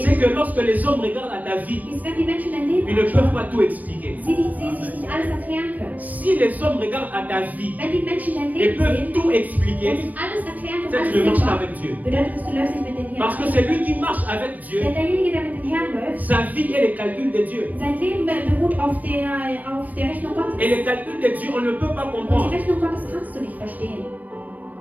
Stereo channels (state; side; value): late; left; 0.078 ms